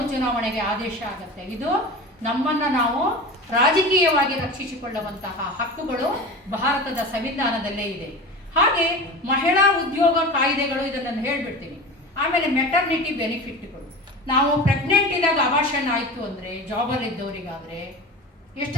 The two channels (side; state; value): both; normal; correlation 0.31